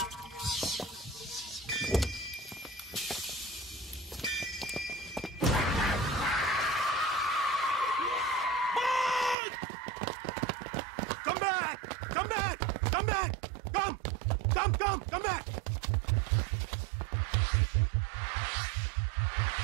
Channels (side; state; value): left; drops out; at 9.3 s